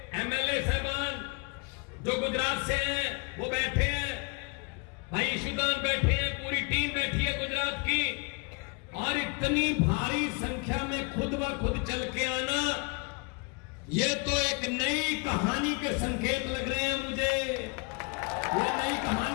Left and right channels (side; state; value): right; quieter; 32.4 dB